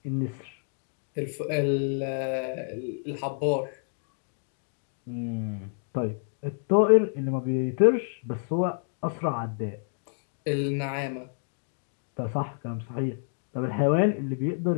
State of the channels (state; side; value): silent; right; digital silence